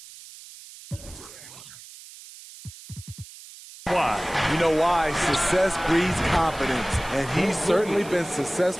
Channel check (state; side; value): noise; right; hiss, 18 dB below the sound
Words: why. You know why? Success breeds confidence, and he's certainly been